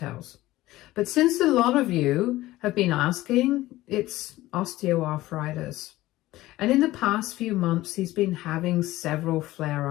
But since a lot of you have been asking, it's osteoarthritis. And in the past few months, he's been having several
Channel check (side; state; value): right; quieter; 16.9 dB